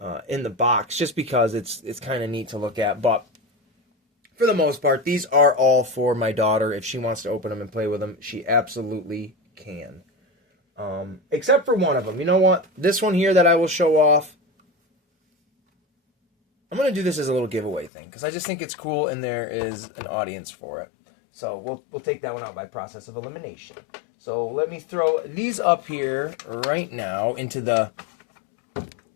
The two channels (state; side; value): drops out; right; at 17.9 s